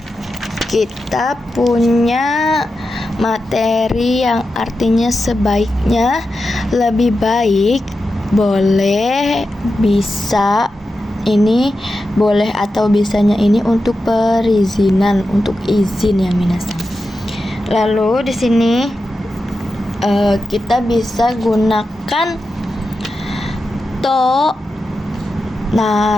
kita punya materi yang artinya sebaiknya, lebih baik, boleh, bisa. Ini boleh atau bisanya ini untuk perizinan, untuk izin ya minasang. Lalu di sini kita bisa gunakan to,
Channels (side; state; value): both; normal; correlation 0.90